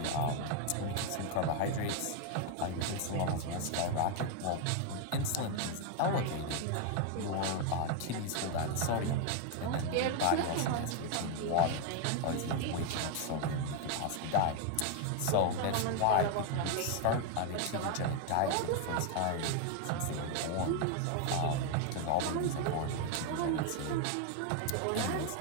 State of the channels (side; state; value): both; different; correlation 0.01